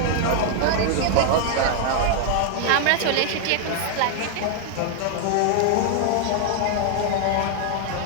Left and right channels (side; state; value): both; different; correlation 0.00